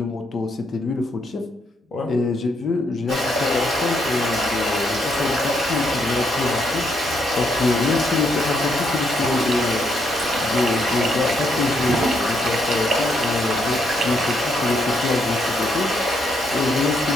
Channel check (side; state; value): both; normal; correlation 0.75